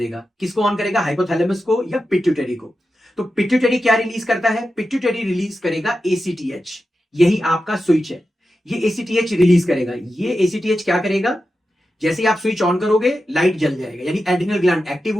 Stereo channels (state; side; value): normal; both; correlation 0.91